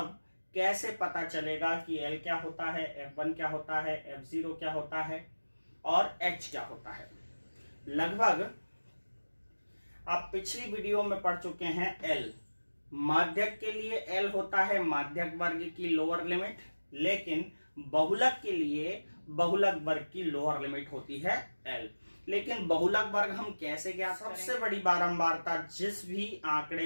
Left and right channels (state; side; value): inverted; both; correlation -1.00